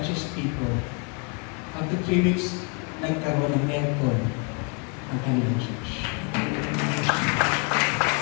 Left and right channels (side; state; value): right; quieter; 35.0 dB